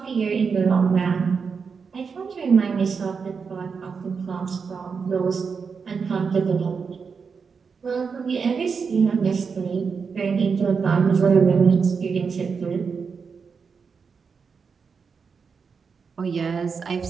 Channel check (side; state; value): left; quieter; 5.6 dB